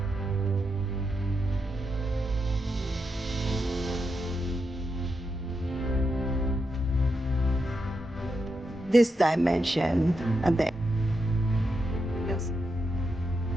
This dimension and then. Yes.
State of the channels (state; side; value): normal; both; correlation 0.84